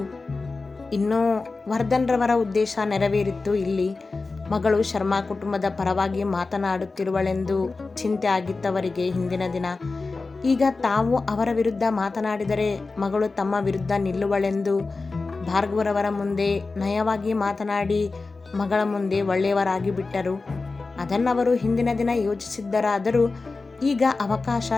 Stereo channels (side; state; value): right; quieter; 3.8 dB